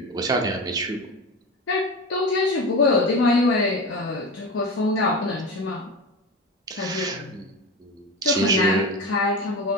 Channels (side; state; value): both; normal; correlation 0.26